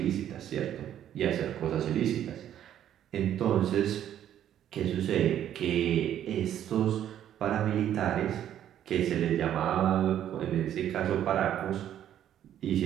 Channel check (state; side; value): quieter; left; 10.8 dB